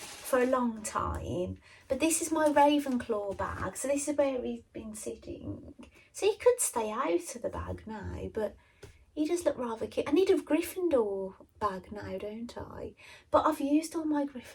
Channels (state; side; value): identical; both; correlation 1.00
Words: a long time. But this is my Ravenclaw bag. So this is where he's been sitting. So he could stay out of the bag now, but he does look rather cute. I need a Gryffindor bag now, don't I? But I've used all my